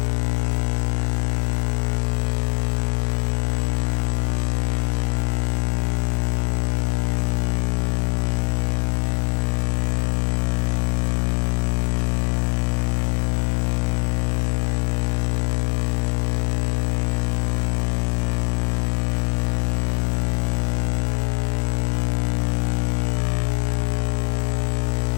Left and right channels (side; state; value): right; silent; 64 dB below the other